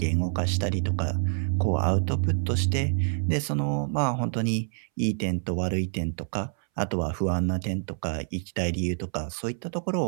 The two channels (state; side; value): silent; left; 60 dB below the other